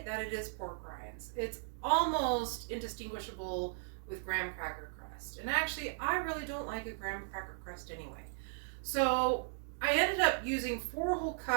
that it is pork rinds. It's almost indistinguishable with graham cracker crust, and actually I really don't like a graham cracker crust anyway. So I ended up using 4 whole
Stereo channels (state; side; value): silent; left; digital silence